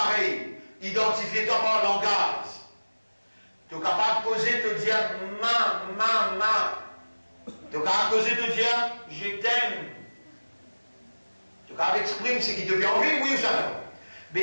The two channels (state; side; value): inverted; both; correlation -1.00